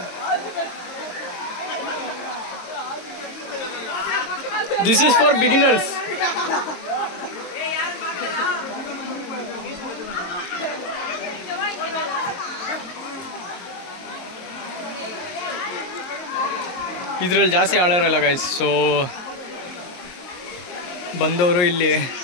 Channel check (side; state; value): right; late; 22 ms